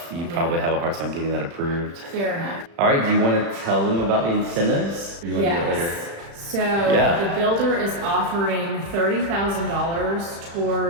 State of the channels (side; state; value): left; late; 35 ms